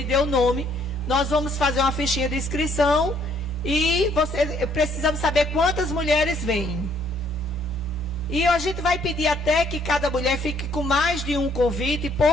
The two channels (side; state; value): both; normal; correlation 0.65